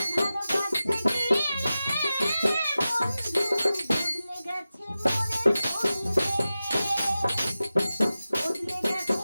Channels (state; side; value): inverted; both; correlation -0.94